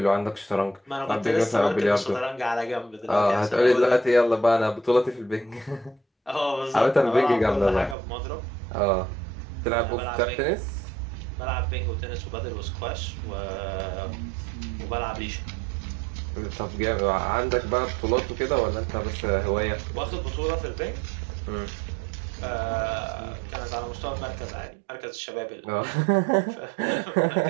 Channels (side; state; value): left; drops out; at 8.0 s